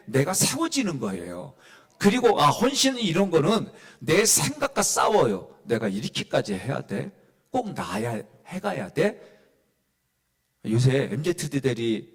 내가 세워지는 거예요. 그리고 헌신은 이런 거는 내 생각과 싸워요. 내가 이렇게까지 해야 돼? 꼭 나야 해가야 돼? 요새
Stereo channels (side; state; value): both; identical; correlation 1.00